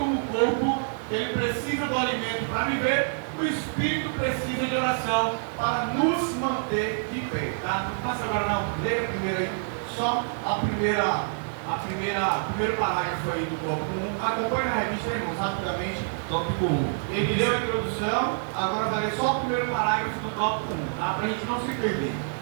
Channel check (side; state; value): left; silent; digital silence